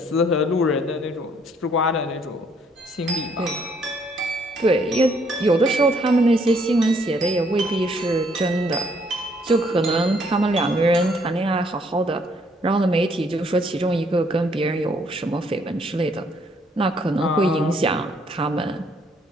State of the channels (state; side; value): normal; both; correlation 0.67